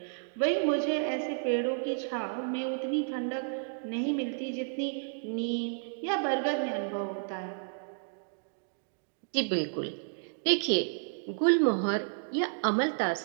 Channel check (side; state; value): left; silent; digital silence